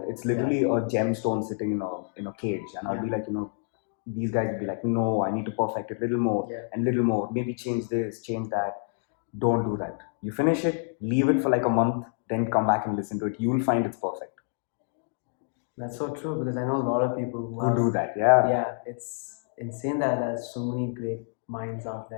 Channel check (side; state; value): right; silent; digital silence